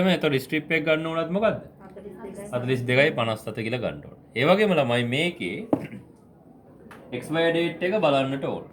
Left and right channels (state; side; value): identical; both; correlation 1.00